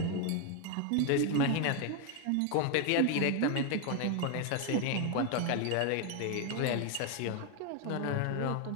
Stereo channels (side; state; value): both; different; correlation 0.01